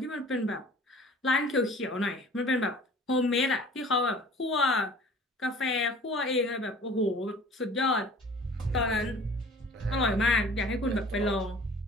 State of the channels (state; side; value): normal; both; correlation 0.47